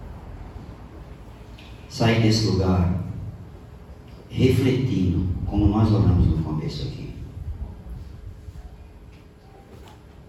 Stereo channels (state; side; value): identical; both; correlation 1.00